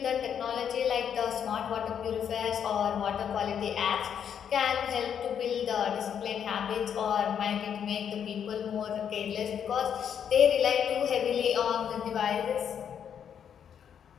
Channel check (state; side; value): quieter; right; 8.3 dB